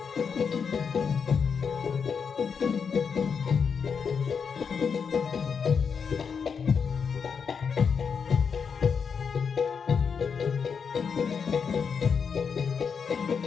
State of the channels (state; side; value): quieter; right; 6.2 dB